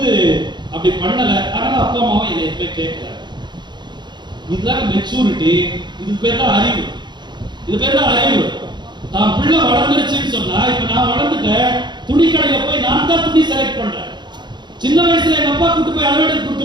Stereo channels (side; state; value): left; late; 0.21 ms